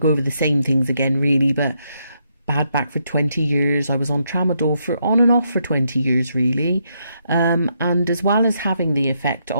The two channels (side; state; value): both; inverted; correlation -0.78